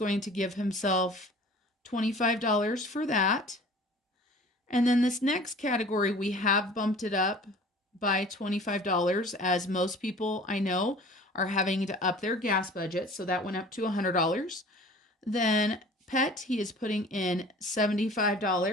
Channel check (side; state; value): both; normal; correlation 0.46